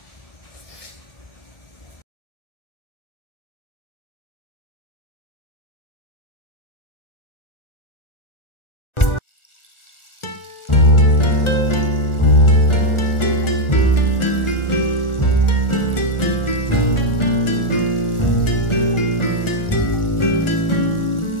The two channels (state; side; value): late; right; 1.4 ms